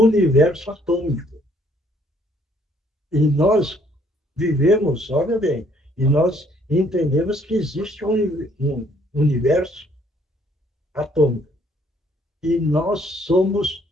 atômico. E nós vivemos, olha bem, e nós entendemos que existe um universo atômico. E nós somos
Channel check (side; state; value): both; normal; correlation 0.64